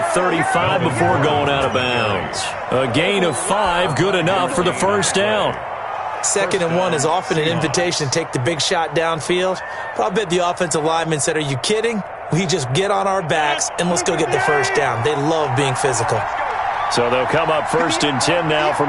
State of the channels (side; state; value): both; identical; correlation 1.00